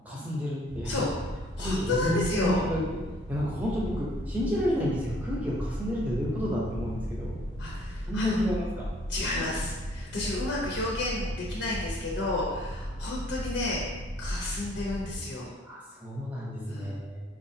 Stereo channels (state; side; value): normal; both; correlation 0.60